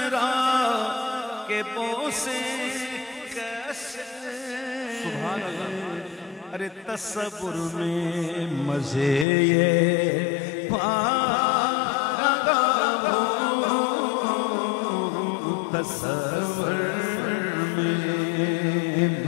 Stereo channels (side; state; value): right; drops out; at 9.2 s